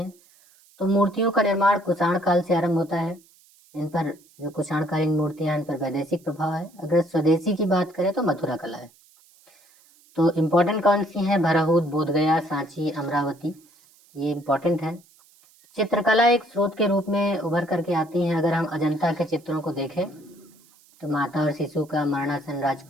तो मूर्तियों का निर्माण कुषाण काल से आरंभ होता है। इन पर जो कुषाणकालीन मूर्तियां, इन पर वैदेशिक प्रभाव है। अगर स्वदेशी की बात करें तो मथुरा कला है। तो इम्पोर्टेंट कौन सी है? भरहूत, बोधगया, सांची, अमरावती, ये इम्पोर्टेंट है। चित्रकला एक स्रोत के रूप में उभर करके आती है। अगर हम अजंता के चित्रों को देखें तो माता और शिशु का, मरणासन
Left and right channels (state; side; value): noise; right; hiss, 29 dB below the sound